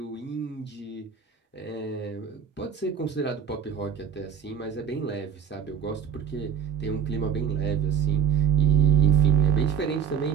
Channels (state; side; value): quieter; left; 7.6 dB